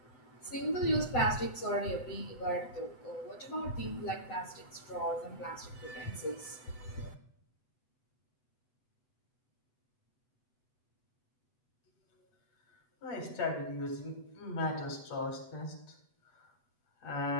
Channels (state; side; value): late; right; 7.8 ms